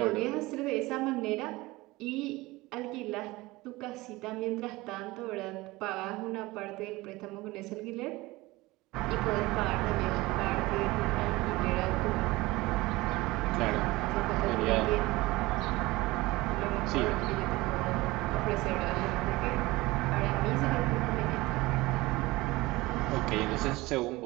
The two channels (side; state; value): left; quieter; 20.6 dB